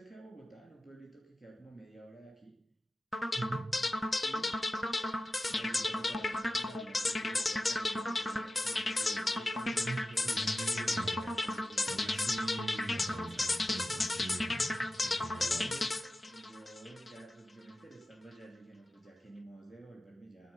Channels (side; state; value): both; normal; correlation 0.94